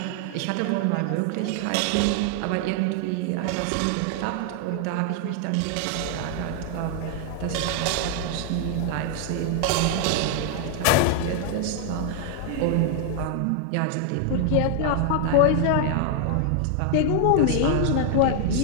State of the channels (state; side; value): different; both; correlation 0.00